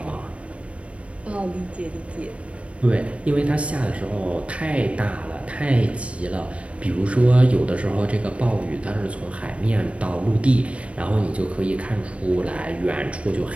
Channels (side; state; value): left; late; 0.063 ms